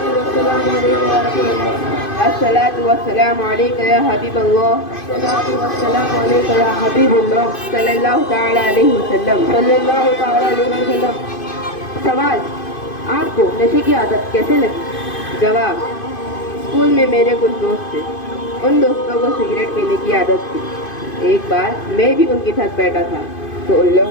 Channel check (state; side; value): late; right; 2.5 ms